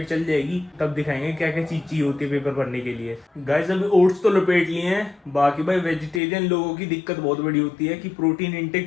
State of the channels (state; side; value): drops out; right; at 6.2 s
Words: चल जाएगी, तब दिखाएंगे क्या क्या चीज चाहिए होती है पेपर भरने के लिए। गाइस अभी ओट्स तो लपेट लिए हैं। बाकी भाई वेजिटेरियन लोगों की दिक्कत बहुत बड़ी होती है कि प्रोटीन